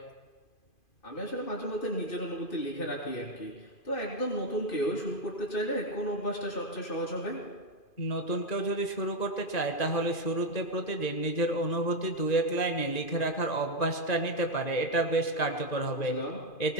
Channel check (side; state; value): right; late; 2.5 ms